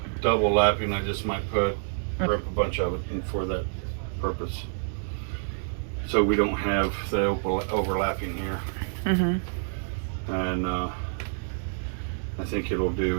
double lapping, I just might rip a bunch of it in for that purpose, so we don't have the overlapping here. And I think it'll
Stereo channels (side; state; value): left; silent; digital silence